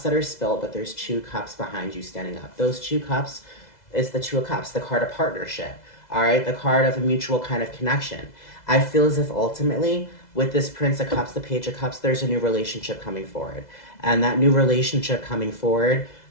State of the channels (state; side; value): late; right; 2.0 ms